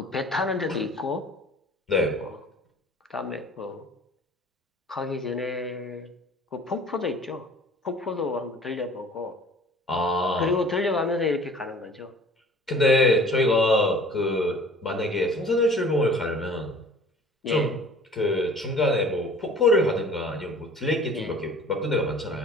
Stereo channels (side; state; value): both; normal; correlation 0.48